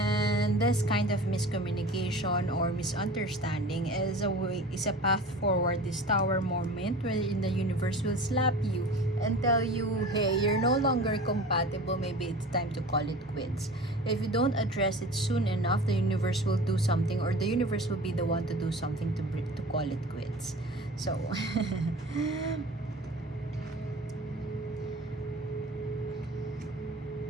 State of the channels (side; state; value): both; normal; correlation 0.38